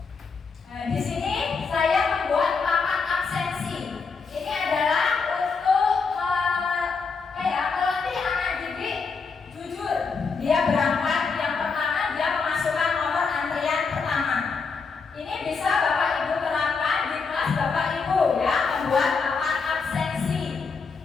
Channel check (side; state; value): right; quieter; 4.9 dB